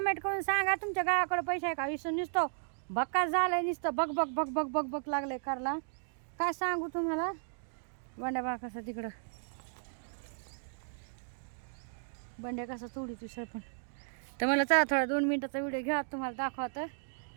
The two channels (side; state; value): left; silent; digital silence